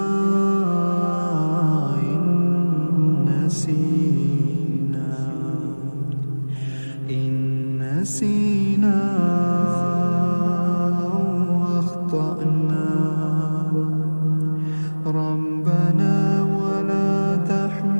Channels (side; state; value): both; inverted; correlation -1.00